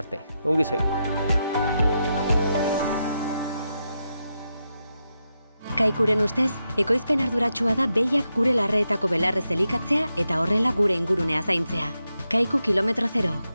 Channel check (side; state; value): both; inverted; correlation -0.86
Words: arte. Ongi segi. Kaikuren ustez, ekoizpen arduratsua da behiak gure larreetako belarrez elikatzea eta horrela gure ingurunea zaintzea. Kaiku kilometro zero,